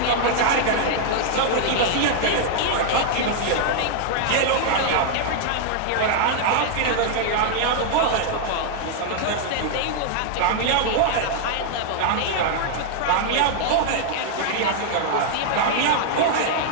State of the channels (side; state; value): both; different; correlation 0.00